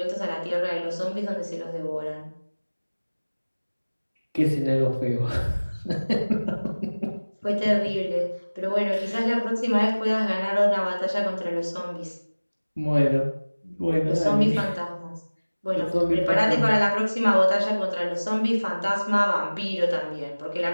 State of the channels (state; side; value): inverted; both; correlation -1.00